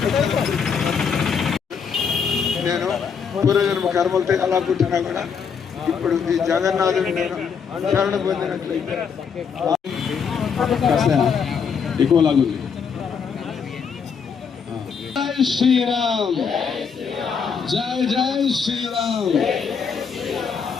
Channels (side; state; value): right; quieter; 6.4 dB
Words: నేను పూర్వజన్మ కర్మలతో ఎలా పుట్టినా కూడా ఇప్పుడు ఈ జగన్నాథుడు నేను శరణ పొందినట్లయితే ఎక్కువ లాగుంది. జై శ్రీరామ్, జై జై శ్రీరామ్,